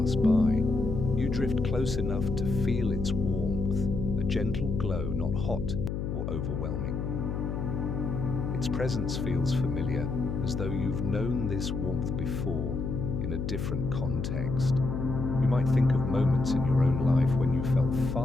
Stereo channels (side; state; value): left; noise; hum, 3 dB below the sound